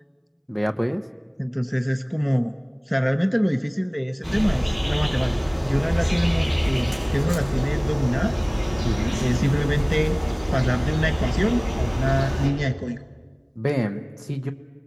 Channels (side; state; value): both; identical; correlation 1.00